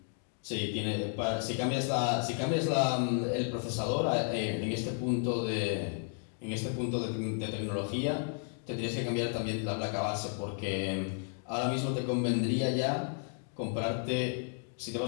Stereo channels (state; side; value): silent; right; 55 dB below the other